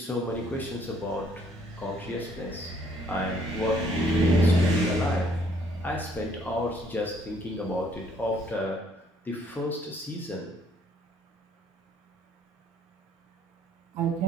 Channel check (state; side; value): normal; both; correlation 0.64